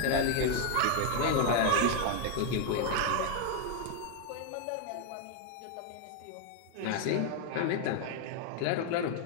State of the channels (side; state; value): both; different; correlation 0.00